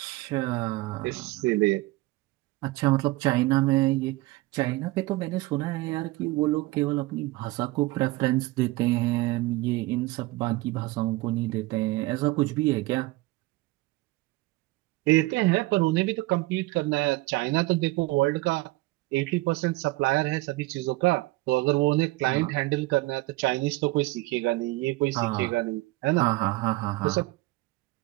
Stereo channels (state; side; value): quieter; left; 20.3 dB